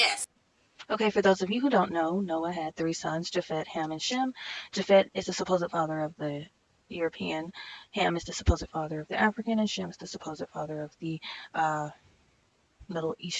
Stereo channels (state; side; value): identical; both; correlation 1.00